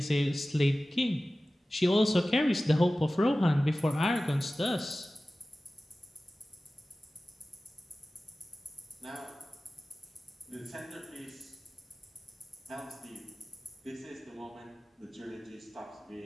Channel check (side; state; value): both; normal; correlation 0.96